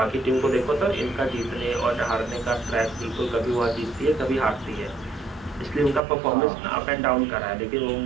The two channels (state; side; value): drops out; left; at 6.0 s